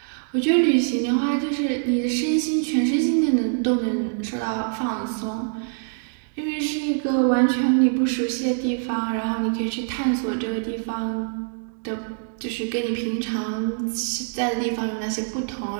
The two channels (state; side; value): silent; left; digital silence